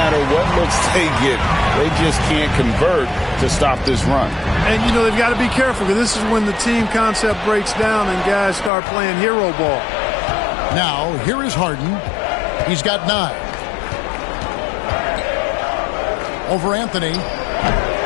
what looks they get, they just can't convert to stop this run. And, you know, they've got to be careful because this is when the team concept breaks down and guys start playing hero ball. Now, here is Harden. He's got 9. Over Anthony.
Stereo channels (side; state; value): right; drops out; at 8.7 s